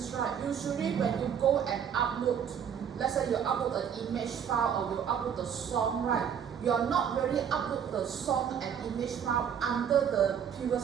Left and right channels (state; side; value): quieter; left; 8.1 dB